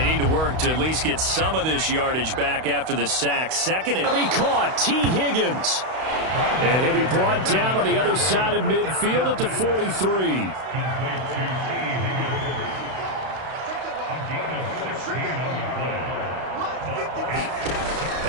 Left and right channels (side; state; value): left; late; 32 ms